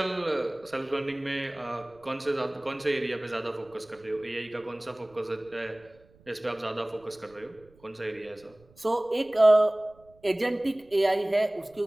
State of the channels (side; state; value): right; noise; rumble, 29 dB below the sound